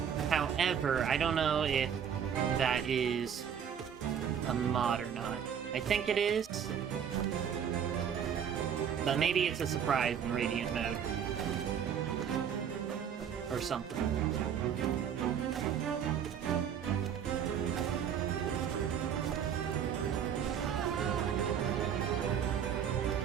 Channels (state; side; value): quieter; left; 8.2 dB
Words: However, I don't know if that is a mod or not. I think it is. But maybe it's a surprise in Radiant mode. Or something.